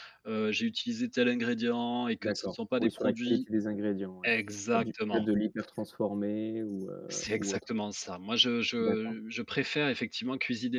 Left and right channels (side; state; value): both; identical; correlation 1.00